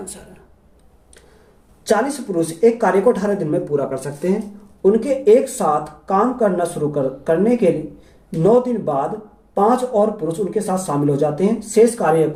है। 40 पुरुष एक कार्य को 18 दिन में पूरा कर सकते हैं। उनके एक साथ काम करना शुरू करने के लिए 9 दिन बाद 5 और पुरुष उनके साथ शामिल हो जाते हैं। शेष कार्य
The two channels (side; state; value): both; identical; correlation 1.00